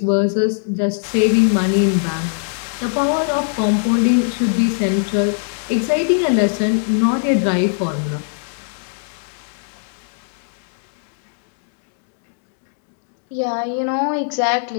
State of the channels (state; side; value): silent; right; digital silence